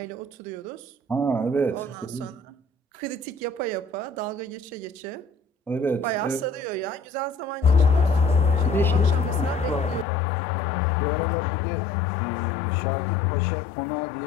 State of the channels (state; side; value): drops out; right; at 10.1 s